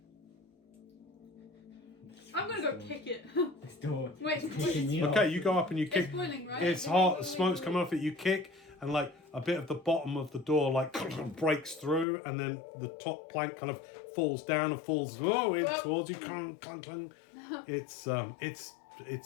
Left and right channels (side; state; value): right; drops out; at 12.1 s